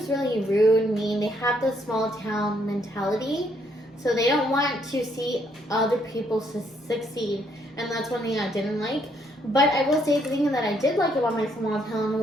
really rude, mean. They have the small town mentality. So they don't want to see other people succeed. And that's one thing I didn't like. But I will say the thing that I did like about my small town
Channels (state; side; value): normal; both; correlation 0.71